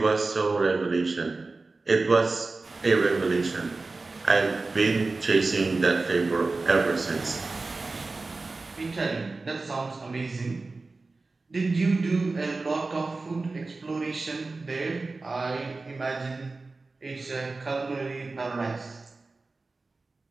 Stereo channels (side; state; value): left; quieter; 3.6 dB